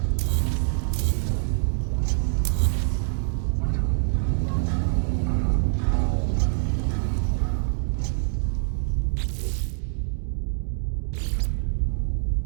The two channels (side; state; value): left; silent; digital silence